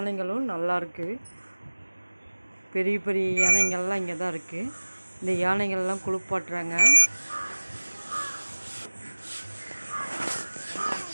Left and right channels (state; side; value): inverted; both; correlation -1.00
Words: நல்லாயிருக்கு. பெரிய பெரிய யானைகள்லாம் இங்கே தான் இருக்குது. இந்த யானைகள்லாம் குளிப்பாட்டுறாங்க.